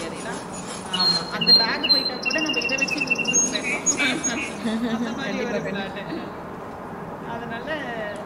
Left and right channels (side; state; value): both; identical; correlation 1.00